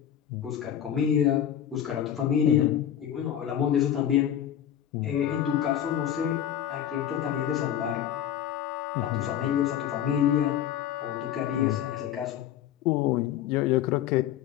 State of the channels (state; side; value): quieter; right; 10.3 dB